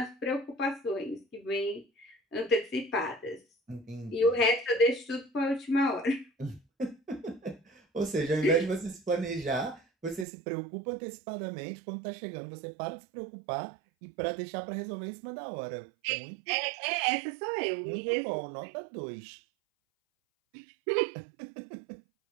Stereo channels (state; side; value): drops out; left; at 10.2 s